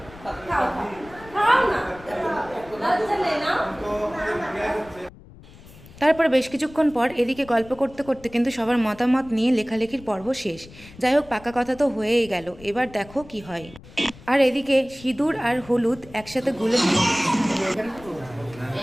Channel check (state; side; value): noise; left; rumble, 20 dB below the sound